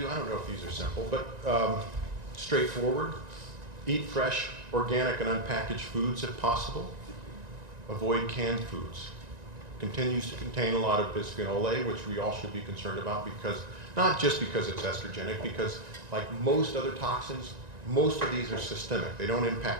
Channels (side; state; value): left; late; 1.9 ms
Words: I don't know if these are simple, but straightforward. Eat fresh, organic, and unpackaged foods if possible. Avoid canned foods. Continues to contain a lot of bisphenol A, which we all should be concerned about, because not just because it's estrogenic, because like most other toxins, most of these are systemic. They don't